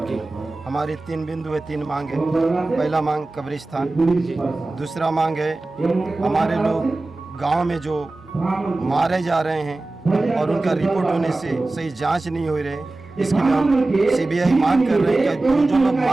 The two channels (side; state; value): left; quieter; 3.1 dB